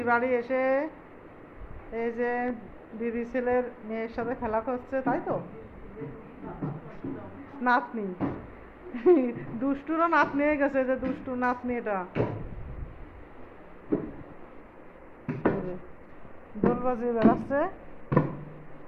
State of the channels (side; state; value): both; identical; correlation 1.00